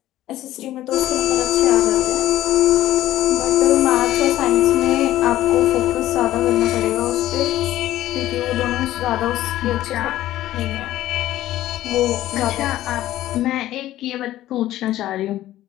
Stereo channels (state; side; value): quieter; right; 14.3 dB